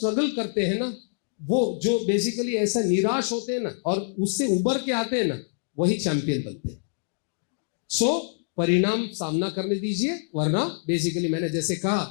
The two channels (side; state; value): right; silent; digital silence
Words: करते हैं ना, वो जो बेसिकली ऐसा निराश होते हैं ना और उससे उबर के आते हैं ना, वही चैंपियन बनते हैं। सो परिणाम सामना करने दीजिए, वरना बेसिकली मैंने जैसे